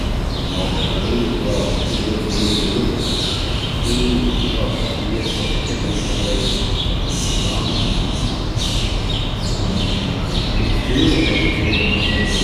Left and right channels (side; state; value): both; identical; correlation 1.00